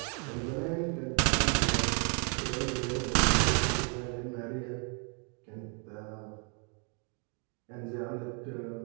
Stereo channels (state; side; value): quieter; left; 38.5 dB